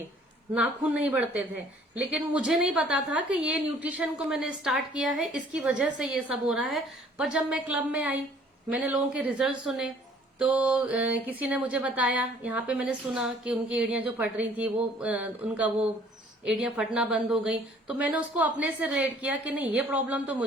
नाखून नहीं बढ़ते थे। लेकिन मुझे नहीं पता था कि ये न्यूट्रिशन को मैंने स्टार्ट किया है, इसकी वजह से ये सब हो रहा है। पर जब मैं क्लब में आई, मैंने लोगों के रिजल्ट सुने, तो किसी ने मुझे बताया, यहाँ पे मैंने सुना कि उनकी एड़ियां जो फट रही थी वो उनका वो एड़ियां फटना बंद हो गई। तो मैंने उसको अपने से रिलेट किया कि नहीं, ये प्रॉब्लम तो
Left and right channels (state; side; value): normal; both; correlation 0.57